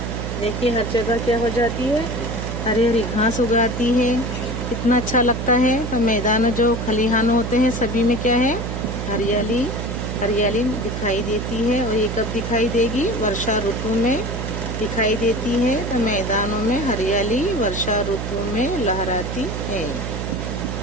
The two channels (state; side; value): noise; right; hum, 4 dB below the sound